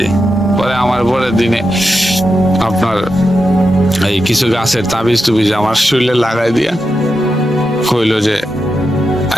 পরে আমার পরের দিনে আপনার এই কিছু গাছের তাবিজ টুবিজ আমার শরীরে লাগাই দিয়া কইল যে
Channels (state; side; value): normal; both; correlation 0.88